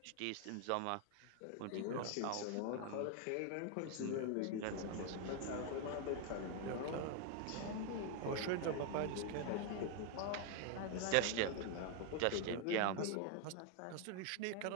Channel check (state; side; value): different; both; correlation 0.00